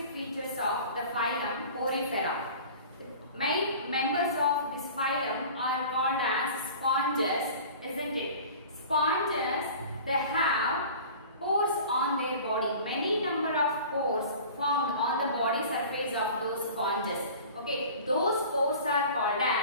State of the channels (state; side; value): inverted; both; correlation -0.41